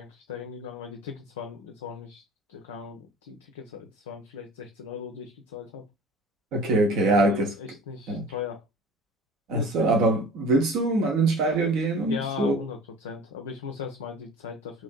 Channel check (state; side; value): normal; both; correlation 0.43